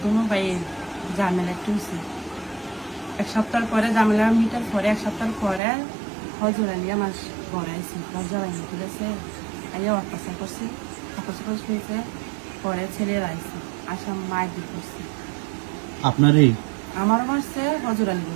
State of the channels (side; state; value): left; drops out; at 5.6 s